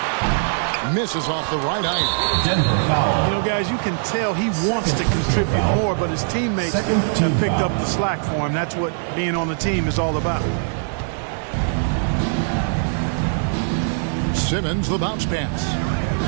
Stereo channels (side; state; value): left; silent; 65 dB below the other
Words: Misses off the right iron. Denver foul. You know, guys, you can tell he wants to contribute more, but his teammates have picked up the slack for him. That's what being on the team is all about. Simmons, the bounce pass.